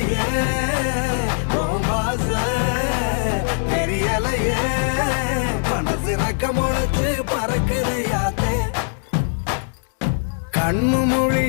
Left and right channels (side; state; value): right; silent; digital silence